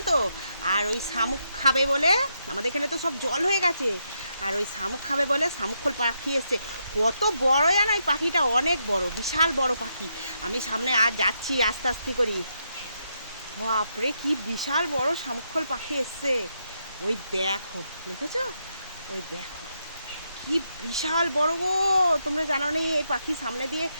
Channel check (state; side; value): inverted; both; correlation -0.81